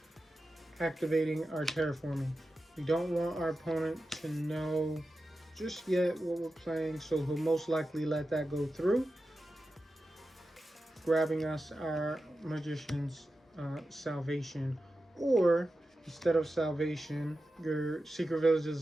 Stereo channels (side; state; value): both; normal; correlation 0.92